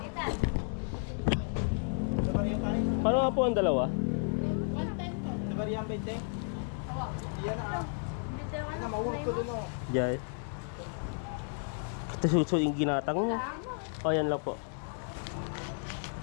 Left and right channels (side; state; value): right; silent; 56 dB below the other